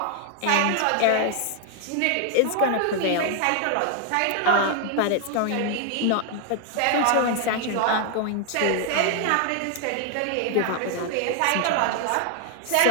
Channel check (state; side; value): different; both; correlation 0.00